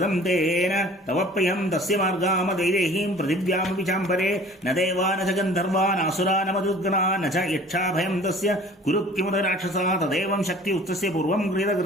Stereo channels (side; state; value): both; normal; correlation 0.48